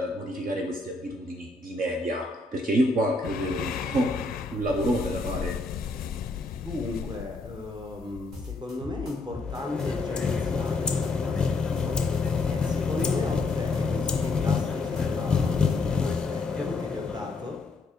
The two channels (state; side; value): quieter; right; 3.1 dB